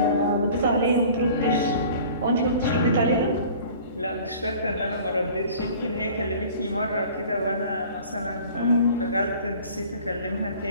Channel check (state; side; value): inverted; both; correlation -0.46